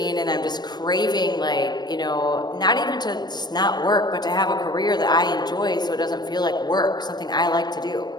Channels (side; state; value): right; late; 0.20 ms